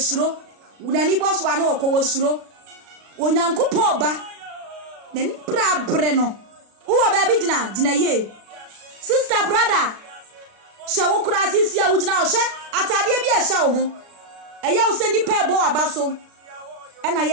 una ni boso ane okowo suro onyankopon ba na ni brabre no wo ba bi gina ye sister brother shawo kura sisi a wugina o hye atade bi a hye wo ho eya wo se ni pa ebo abaso ena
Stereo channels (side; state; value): left; late; 36 ms